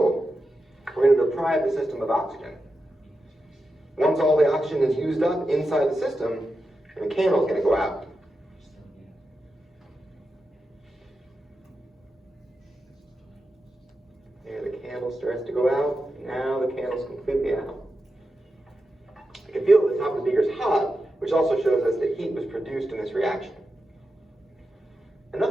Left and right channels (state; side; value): normal; both; correlation 0.90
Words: we're going to deprive the system of oxygen. Once all the oxygen is used up inside the system, the candle is going to go out. There, the candle starts to go out, and now the candle's completely out. I can feel that the top of the beaker is hot, which also shows us that heat was produced in this reaction.